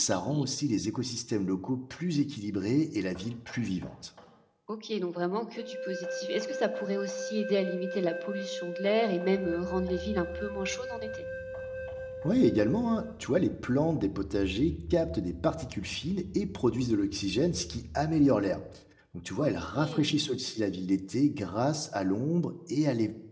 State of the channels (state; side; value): identical; both; correlation 1.00